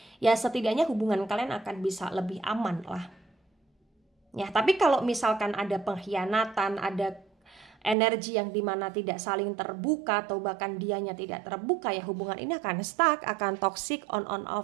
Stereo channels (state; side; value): drops out; left; at 8.0 s